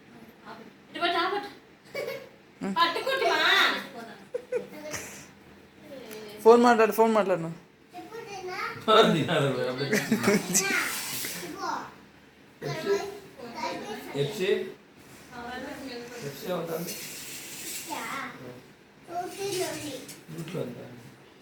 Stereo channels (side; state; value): both; identical; correlation 1.00